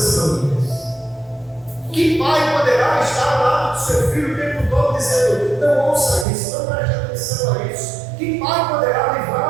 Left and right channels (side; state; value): left; drops out; at 6.2 s